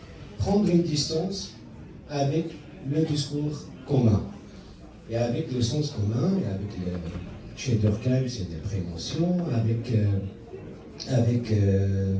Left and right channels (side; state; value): both; identical; correlation 1.00